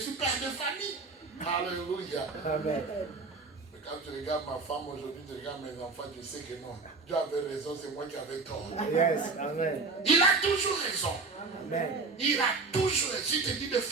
père de famille. Alléluia. Amen. Mais Quand tu regardes ma femme aujourd'hui, tu regardes mes enfants, tu sais que non. Dieu avait raison, c'est moi qui avais tort. Yes. Amen. Il a toujours raison. Amen. Il a toujours raison. Si tu te dis de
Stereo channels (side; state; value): left; quieter; 4.0 dB